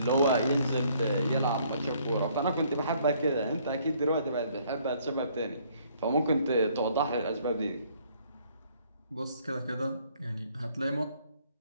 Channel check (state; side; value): inverted; both; correlation -0.63